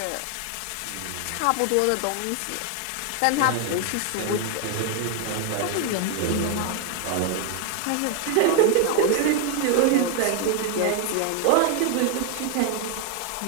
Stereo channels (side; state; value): both; different; correlation 0.00